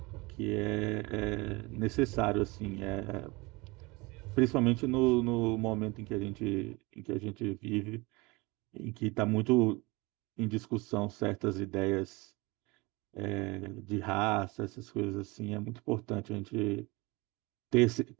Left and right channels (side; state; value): left; quieter; 24.5 dB